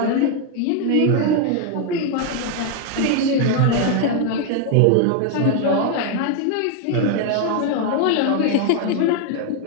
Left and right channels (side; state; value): both; different; correlation 0.00